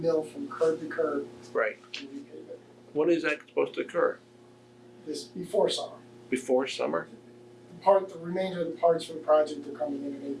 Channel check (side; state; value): both; identical; correlation 1.00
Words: from curb to curb Right. and repave it. When is that supposed to occur? This before summer. Before summer? The remainder of the parts for the project are coming in